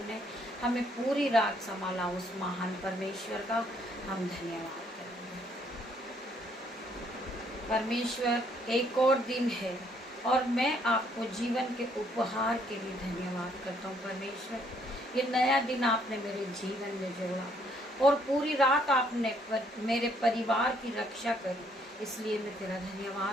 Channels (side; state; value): both; normal; correlation 0.67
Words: ने हमें पूरी रात संभाला। उस महान परमेश्वर का हम धन्यवाद करेंगे। परमेश्वर एक और दिन है और मैं आपको जीवन के उपहार के लिए धन्यवाद करता हूँ। परमेश्वर, ये नया दिन आपने मेरे जीवन में जोड़ा और पूरी रात आपने मेरे परिवार की रक्षा करी, इसलिए मैं तेरा